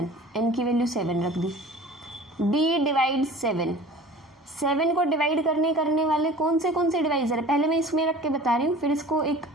n की वैल्यू 7 रख दी। D डिवाइड 7 को डिवाइड करने वाले कौन से डिवाइजर है, पहले मैं इसमें रख के बता रही हूँ, फिर इसको एक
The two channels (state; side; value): normal; both; correlation 0.43